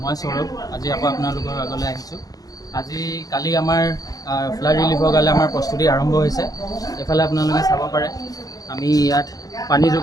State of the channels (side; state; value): right; late; 0.18 ms